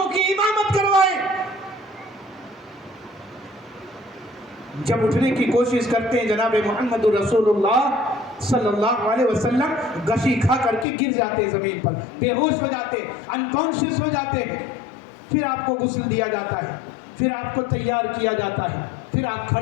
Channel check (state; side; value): drops out; right; at 10.9 s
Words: کی امامت کروائے، جب اٹھنے کی کوشش کرتے ہیں جناب محمد رسول اللہ صلی اللہ علیہ وسلم گشی کھا کر کے گر جاتے ہیں زمین پر، بے ہوش ہو جاتے ہیں، انکانشیس ہو جاتے ہیں، پھر آپ کو غسل دیا جاتا ہے، پھر آپ کو تیار کیا جاتا ہے، پھر آپ